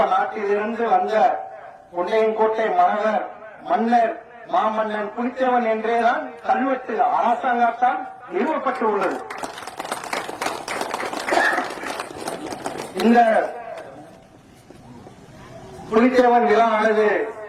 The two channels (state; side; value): identical; both; correlation 1.00